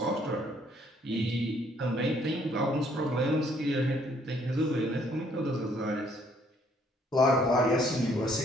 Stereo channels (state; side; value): normal; both; correlation 0.65